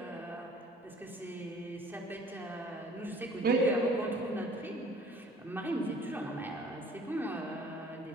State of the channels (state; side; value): normal; both; correlation 0.52